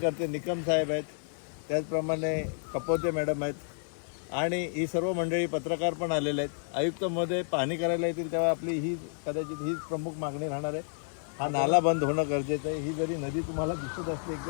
निकम साहेब आहेत, त्याचप्रमाणे कपोते मॅडम आहेत आणि ही सर्व मंडळी पत्रकार पण आलेले आहेत. आयुक्त महोदय पाहणी करायला येतील तेव्हा आपली ही कदाचित हीच प्रमुख मागणी राहणार आहे. हा नाला बंद होणं गरजेचं आहे. ही जरी नदी तुम्हाला दिसत असते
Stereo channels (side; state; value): right; silent; digital silence